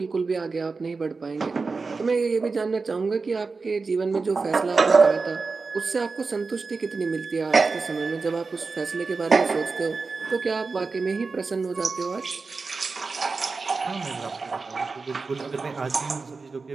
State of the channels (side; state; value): left; quieter; 4.3 dB